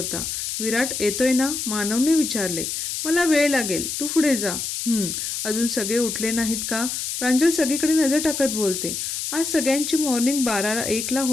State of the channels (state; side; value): noise; left; hiss, 4 dB below the sound